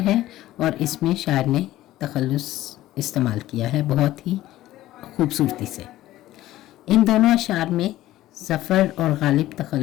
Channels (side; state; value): right; quieter; 15.1 dB